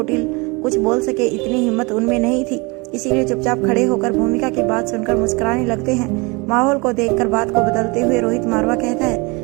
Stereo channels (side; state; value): left; quieter; 27.4 dB